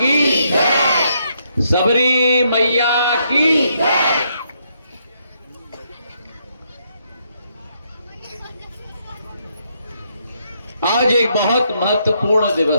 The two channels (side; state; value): both; inverted; correlation -0.75